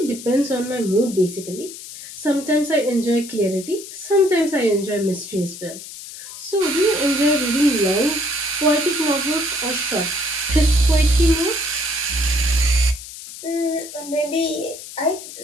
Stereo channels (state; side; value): noise; left; hiss, 13 dB below the sound